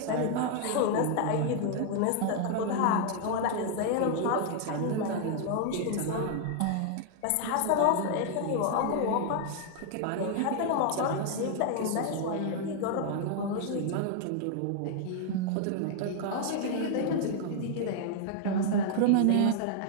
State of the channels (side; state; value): both; different; correlation 0.00